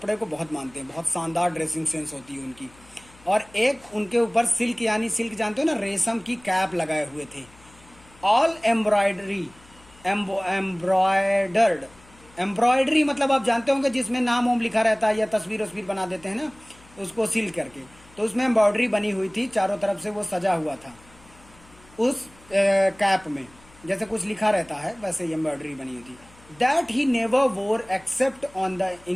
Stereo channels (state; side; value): noise; left; hum, 26 dB below the sound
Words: को बहुत मानते हैं, बहुत शानदार ड्रेसिंग सेंस होती है उनकी। और एक उनके ऊपर सिल्क, यानी सिल्क जानते हो ना, रेशम की कैप लगाए हुए थे। ऑल एम्ब्रॉयडरी, एम्ब्रॉयडर्ड, एम्ब्रॉयडरी मतलब आप जानते होंगे जिसमें नाम वाम लिखा रहता है या तस्वीर वस्वीर बना देते हैं ना, उसको सील करके, तो उसमें एम्ब्रॉयडरी बनी हुई थी, चारों तरफ से वो सजा हुआ था उस कैप में, जैसे कुछ लिखा रहता है वैसे एम्ब्रॉयडरी बनी हुई थी। That he never wore except on the